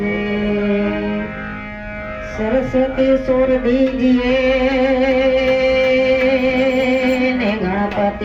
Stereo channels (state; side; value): identical; both; correlation 1.00